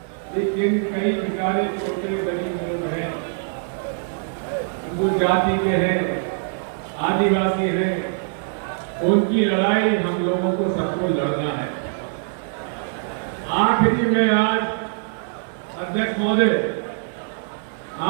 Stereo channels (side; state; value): left; silent; digital silence